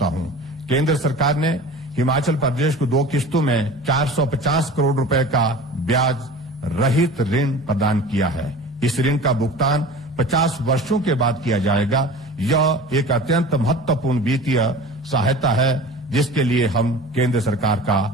हूं। केंद्र सरकार ने हिमाचल प्रदेश को 2 किस्तों में 450 करोड़ रुपए का ब्याज रहित ऋण प्रदान किया है। इस ऋण का भुगतान 50 वर्षों के बाद किया जाएगा। यह एक अत्यंत महत्वपूर्ण वित्तीय सहायता है, जिसके लिए हम केंद्र सरकार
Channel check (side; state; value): both; normal; correlation 0.38